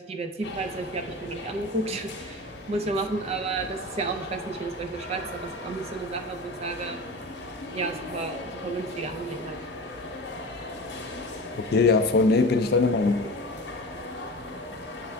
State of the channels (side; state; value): both; normal; correlation 0.32